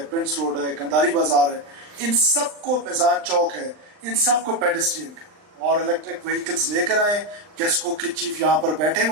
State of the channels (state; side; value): late; left; 39 ms